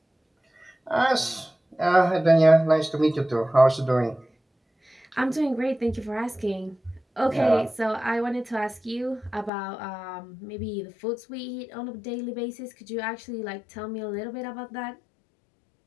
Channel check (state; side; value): drops out; right; at 9.5 s